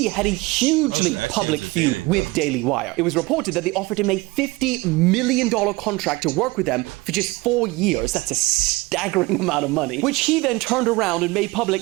had a hugely public feud with Daily Wire. It was reported that they offered him a $50 million contract to work with them for just 4 years. That's a staggering amount of money, which he then turned around and made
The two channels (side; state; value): left; quieter; 22.3 dB